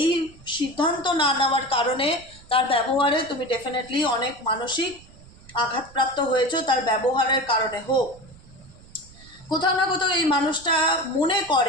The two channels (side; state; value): right; noise; rumble, 23 dB below the sound